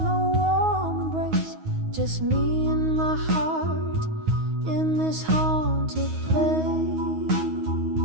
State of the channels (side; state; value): left; late; 9.4 ms